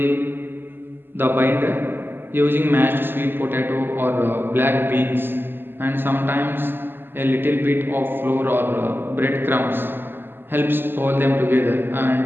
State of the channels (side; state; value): left; late; 0.098 ms